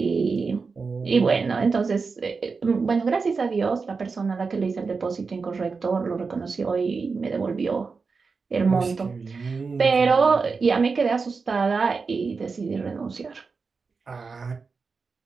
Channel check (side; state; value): left; quieter; 4.7 dB